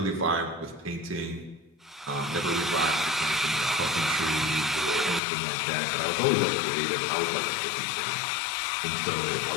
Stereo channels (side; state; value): right; drops out; at 5.2 s